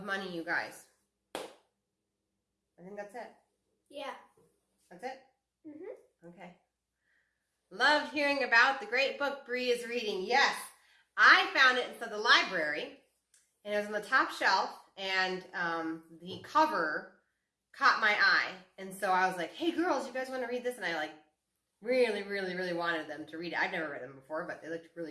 money, you guys. I think that's it. Yeah. That's it? Mm-hmm. Okay. Loved hearing about the great book Bree is reading. Yes, I found it inside the library, and it was on the top shelf, and the cover caught my eye. And so I was like, hey, girls, you guys want to read this? And I really, really, really wanted them to read it. I've never read them before, but they looked really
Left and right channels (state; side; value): identical; both; correlation 1.00